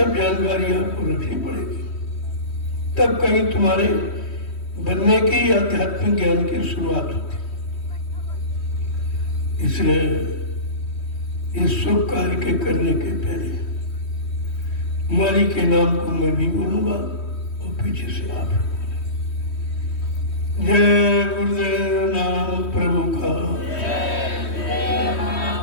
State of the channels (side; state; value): right; late; 3.1 ms